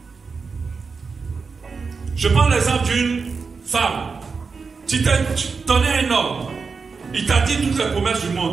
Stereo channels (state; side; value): quieter; left; 4.9 dB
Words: Je prends l'exemple d'une femme. Tu tenais un homme. Il t'a dit toutes les promesses du